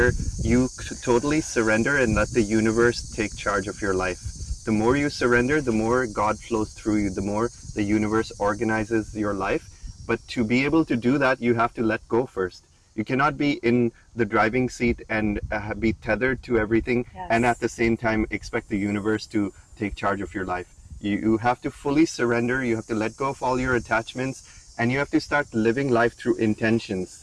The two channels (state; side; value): identical; both; correlation 1.00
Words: you totally surrender and let the universe take charge of your life. The more you surrender, the more God flows through you, the more the universe organizes your life. But to be able to do that, you have to let go first. You cannot be in the driving seat and be tethered to everything, and at the same time expect the universe to take charge of your life. You have to fully surrender. You have to let go of all your attachments And you have to start living life through intentions.